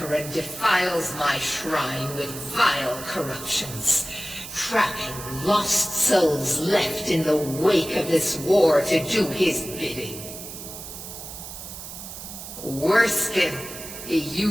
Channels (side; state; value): right; noise; hiss, 11 dB below the sound